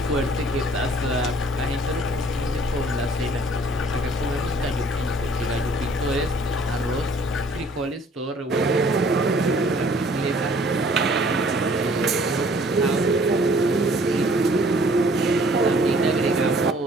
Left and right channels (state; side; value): normal; both; correlation 0.57